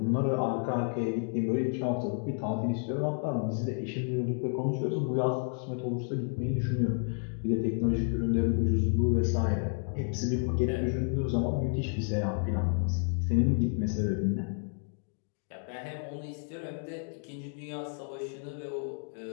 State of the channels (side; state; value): right; silent; 55 dB below the other